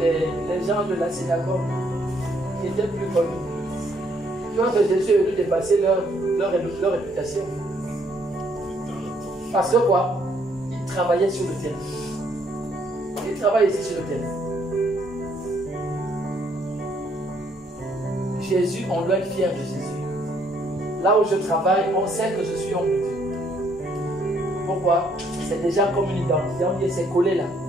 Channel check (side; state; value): both; normal; correlation 0.68